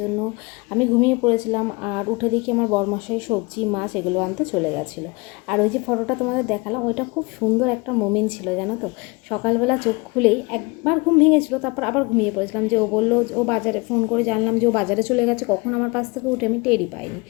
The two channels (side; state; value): right; quieter; 26.8 dB